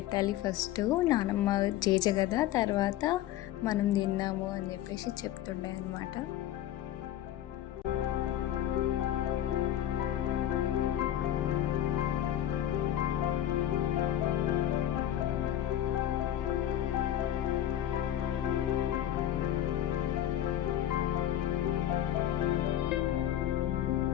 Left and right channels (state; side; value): quieter; right; 11.9 dB